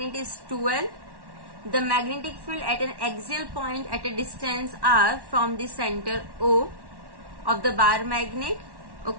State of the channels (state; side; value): late; left; 1.1 ms